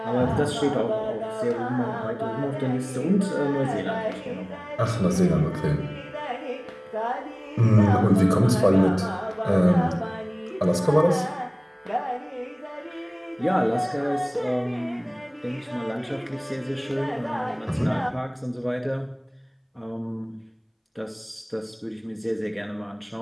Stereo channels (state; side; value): identical; both; correlation 1.00